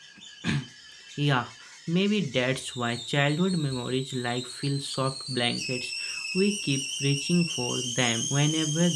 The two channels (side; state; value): both; identical; correlation 1.00